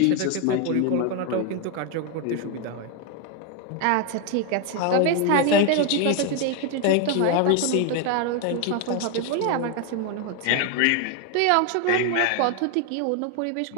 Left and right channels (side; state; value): both; different; correlation 0.01